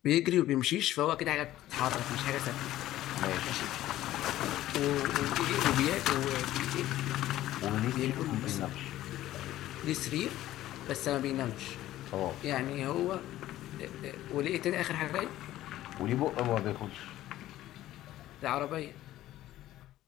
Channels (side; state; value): right; quieter; 14.4 dB